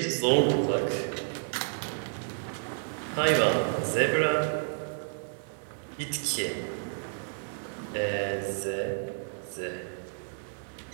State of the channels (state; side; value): silent; left; digital silence